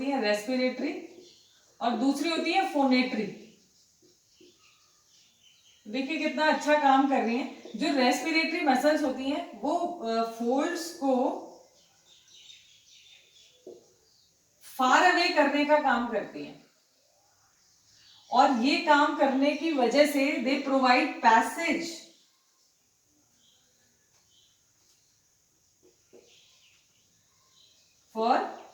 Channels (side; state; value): both; identical; correlation 1.00